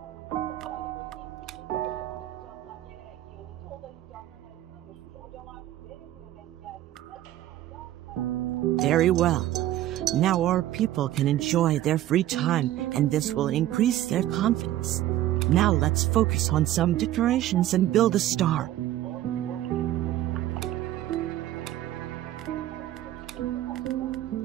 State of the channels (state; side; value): quieter; left; 13.6 dB